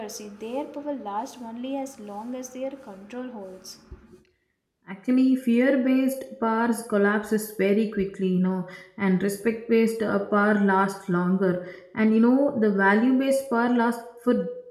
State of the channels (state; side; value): identical; both; correlation 1.00